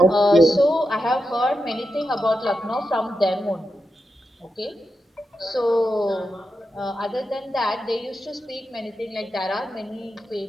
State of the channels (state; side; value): normal; both; correlation 0.88